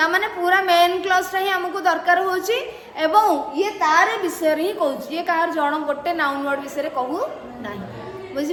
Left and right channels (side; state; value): both; identical; correlation 1.00